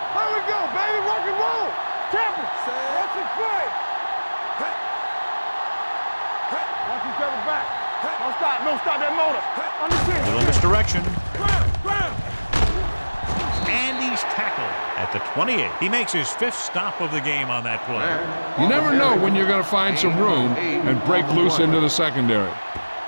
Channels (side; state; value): both; inverted; correlation -1.00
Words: There we go, baby. Rock and roll. Temple. Watch it play. Watch each other back. Don't stop. Don't stop that motor. Understand. Little misdirection. And he's tackled at the 28. He makes his 5th stop of the game on that play. You never know when you're going to find some room and break loose into the secondary.